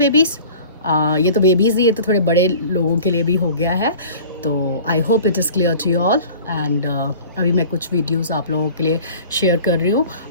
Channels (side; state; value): both; inverted; correlation -0.43